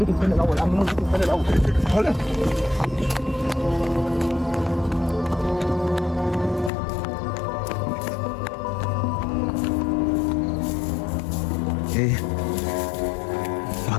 الثاني الاول. عم البيت الثاني الاول. ايه؟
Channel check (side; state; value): right; drops out; at 6.7 s